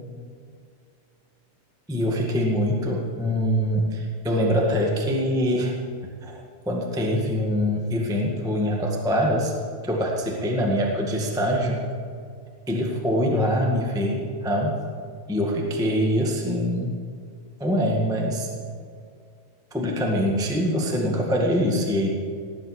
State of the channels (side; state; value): both; normal; correlation 0.31